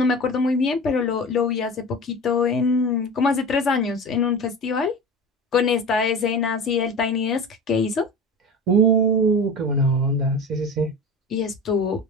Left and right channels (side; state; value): both; normal; correlation 0.32